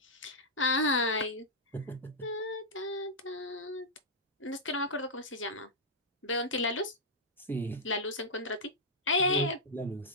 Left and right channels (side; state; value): both; normal; correlation -0.07